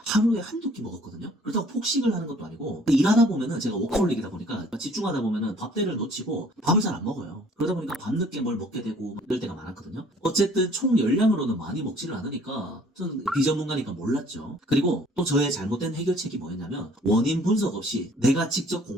한두 끼 먹었거든요. 그렇다고 폭식을 하는 것도 아니고, 일하다 보면은 제가 워커홀릭이다 보니까 집중하다 보면은 밥대를 놓치고 밥을 잘 안 먹어요. 그러다 보니까 밤늦게 뭘 먹게 되고 이럴 때가 많았거든요. 어쨌든 총 열량으로는 많이 먹지를 않으니까 저는 비전문가니까 몰랐죠. 그리고 또 저의 잘못된 해결책이 뭐였냐면, 원인 분석 없이 내가 직접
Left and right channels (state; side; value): normal; both; correlation 0.56